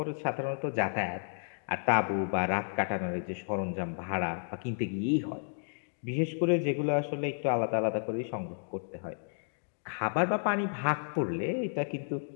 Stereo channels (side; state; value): right; silent; digital silence